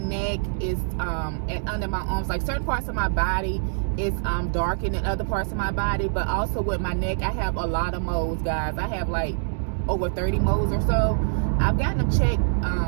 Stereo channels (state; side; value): silent; left; digital silence